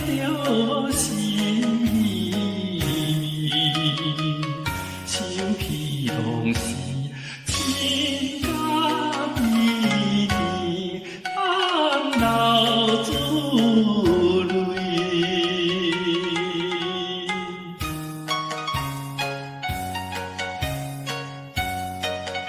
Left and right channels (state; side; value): identical; both; correlation 1.00